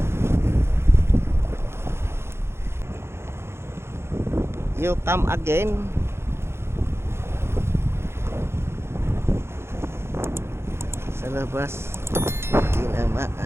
You come again. Sa labas.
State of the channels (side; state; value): left; late; 0.12 ms